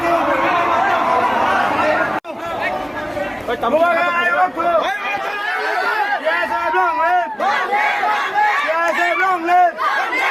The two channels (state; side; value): identical; both; correlation 1.00